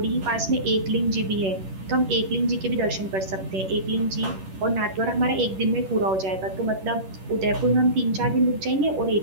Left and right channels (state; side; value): late; left; 10 ms